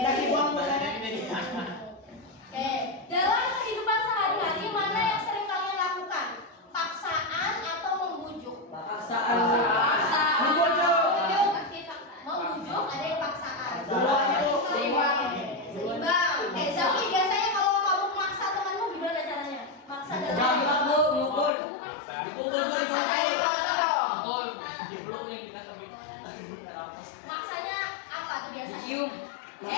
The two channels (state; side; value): drops out; right; at 21.5 s